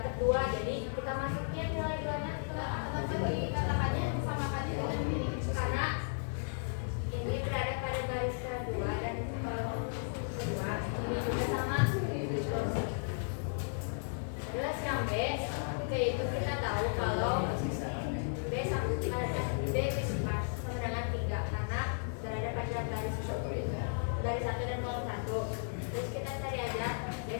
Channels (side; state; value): right; silent; digital silence